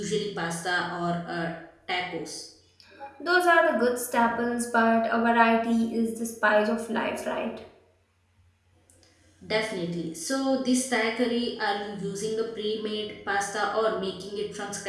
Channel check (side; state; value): both; identical; correlation 1.00